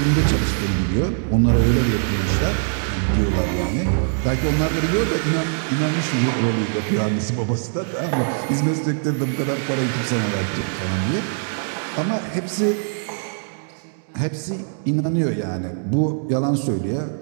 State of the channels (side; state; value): left; silent; digital silence